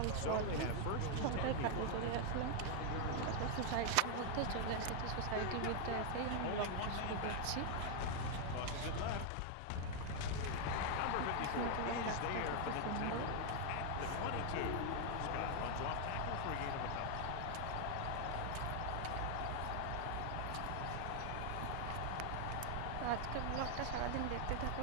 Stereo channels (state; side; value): different; both; correlation 0.00